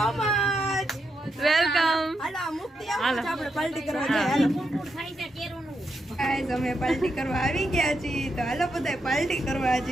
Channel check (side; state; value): both; normal; correlation 0.83